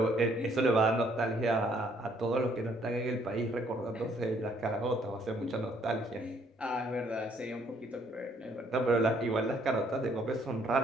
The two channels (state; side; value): normal; both; correlation 0.66